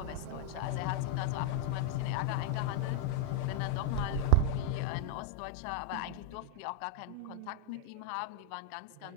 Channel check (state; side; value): different; both; correlation -0.01